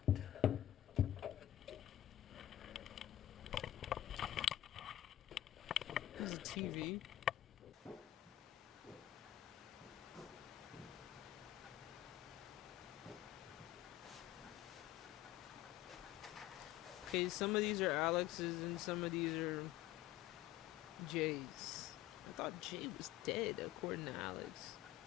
There's a TV. Okay, some of these are Alex's and some of these are Jay's. I thought Jay was dead, according to Alex.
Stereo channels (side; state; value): right; quieter; 13.1 dB